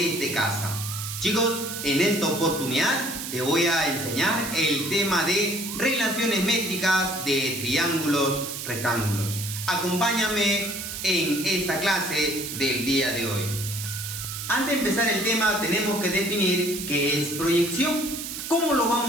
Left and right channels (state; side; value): noise; right; hiss, 7 dB below the sound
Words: casa. Chicos, en esta oportunidad te voy a enseñar el tema de relaciones métricas de triángulos rectángulos. Acompáñame en esta clase del día de hoy. Antes de empezar el tema tenemos que definir qué es proyección. ¿Cómo lo